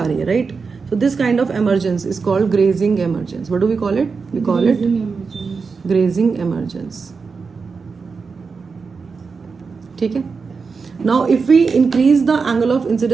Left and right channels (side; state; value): left; quieter; 5.0 dB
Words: रही है, right. So this kind of emergence is called grazing emergence. What do we call it? We call it grazing emergence. ठीक है. Now if we increase the angle of